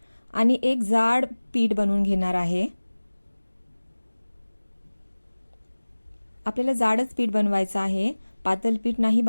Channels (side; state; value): both; inverted; correlation -1.00